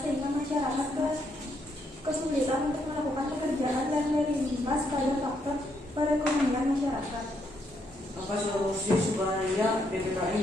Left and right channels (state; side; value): normal; both; correlation 0.75